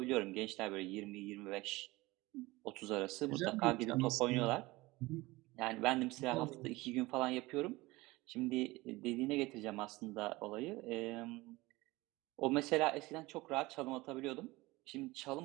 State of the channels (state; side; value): quieter; left; 20.9 dB